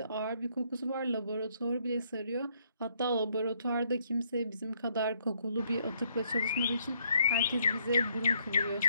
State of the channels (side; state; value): both; inverted; correlation -0.70